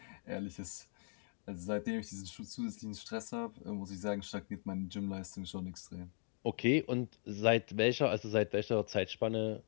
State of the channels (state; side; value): silent; right; 52 dB below the other